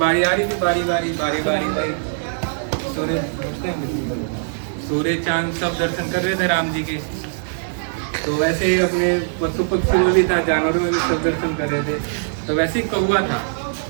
आ रही थी, बारी बारी बारी बारी बारी सूर्य चांद सब दर्शन कर रहे थे राम जी के। तो वैसे ही अपने पशु पक्षी में भी था, जानवरों में भी सब दर्शन कर रहे थे। तो वैसे ही कौवा था।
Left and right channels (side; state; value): left; silent; digital silence